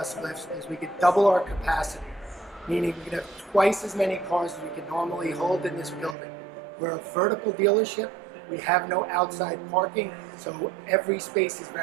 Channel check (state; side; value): drops out; left; at 6.2 s